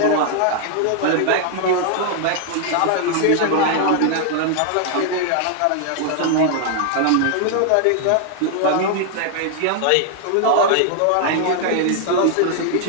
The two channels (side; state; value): both; different; correlation 0.00